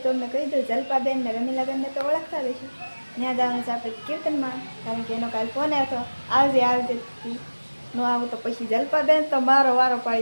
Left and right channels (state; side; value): inverted; both; correlation -1.00